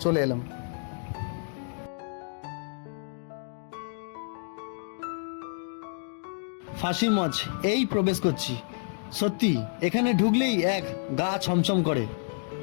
চলে এলাম। ফাঁসির মঞ্চ এই প্রবেশ করছি। সত্যি এখানে ঢুকলেই এক গা ছমছম করে।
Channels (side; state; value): right; silent; digital silence